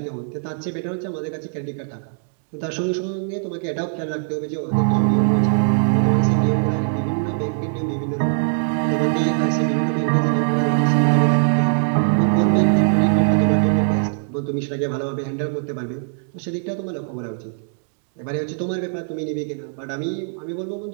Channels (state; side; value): silent; left; digital silence